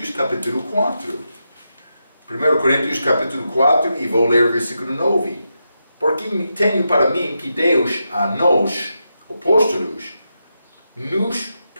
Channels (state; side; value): inverted; both; correlation -0.86